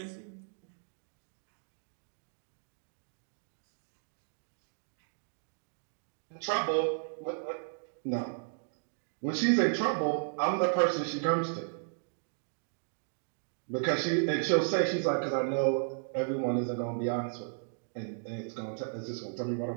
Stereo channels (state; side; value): silent; left; digital silence